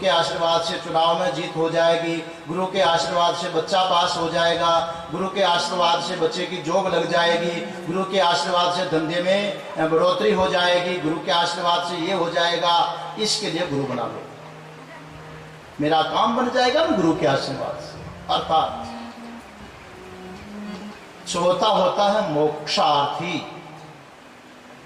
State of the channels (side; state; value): both; identical; correlation 1.00